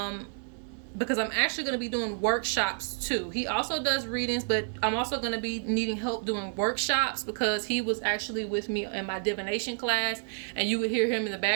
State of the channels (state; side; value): silent; left; 58 dB below the other